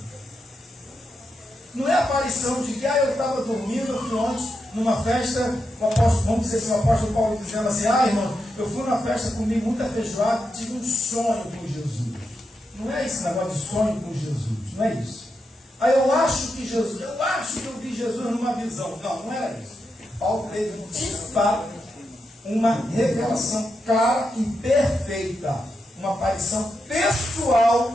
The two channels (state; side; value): normal; both; correlation 0.85